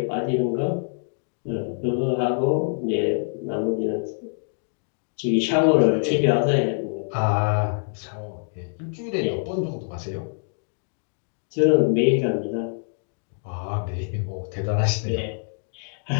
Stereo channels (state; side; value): silent; right; digital silence